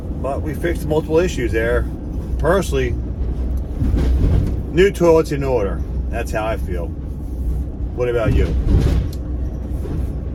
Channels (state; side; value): identical; both; correlation 1.00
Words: But we fixed multiple issues there. Personally, new toilet's in order. That's how I feel. What about you?